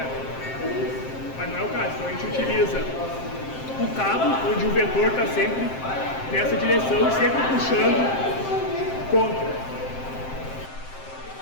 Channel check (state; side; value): late; right; 7.6 ms